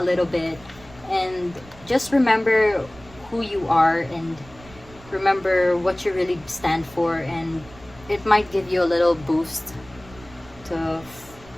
little bit, and just remember who you are and remember what you really stand for, and it might give you a little boost to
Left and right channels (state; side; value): noise; right; rumble, 21 dB below the sound